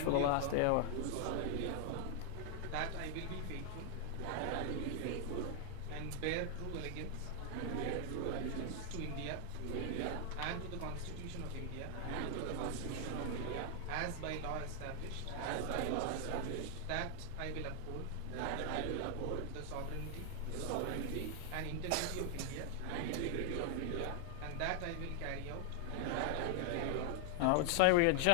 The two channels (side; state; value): both; different; correlation 0.00